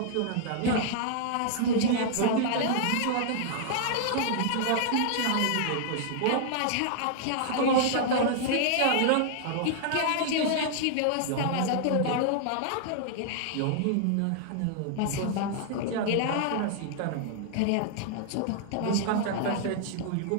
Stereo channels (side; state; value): both; different; correlation -0.01